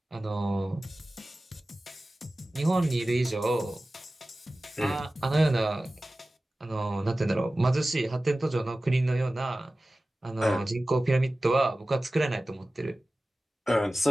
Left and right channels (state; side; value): normal; both; correlation 0.96